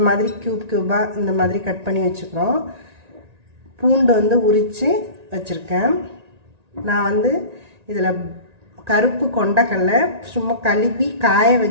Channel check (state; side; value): late; left; 1.9 ms